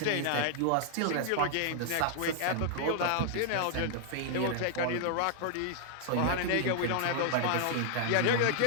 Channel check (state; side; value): different; both; correlation 0.00